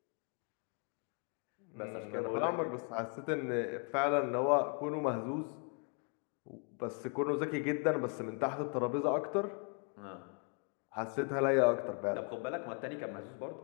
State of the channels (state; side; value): quieter; right; 38.5 dB